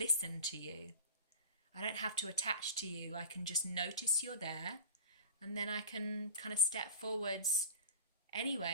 to you. I don't have to attach to you. I can just notice you're there, and then I can kind of step forwards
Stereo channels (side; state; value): both; inverted; correlation -0.35